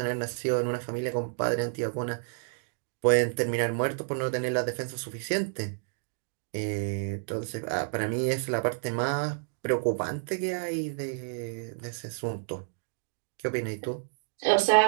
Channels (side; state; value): left; silent; digital silence